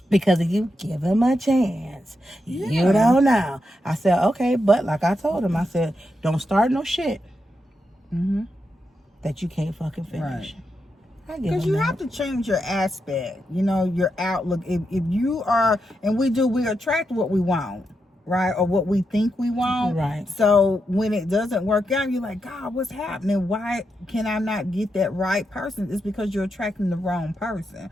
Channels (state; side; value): normal; both; correlation 0.85